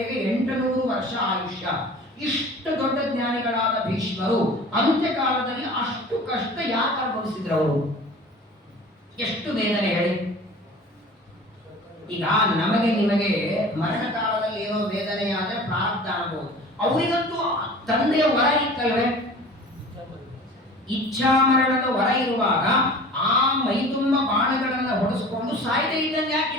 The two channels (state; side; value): normal; both; correlation 0.42